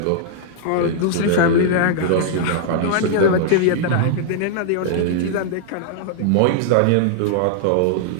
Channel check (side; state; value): both; different; correlation -0.01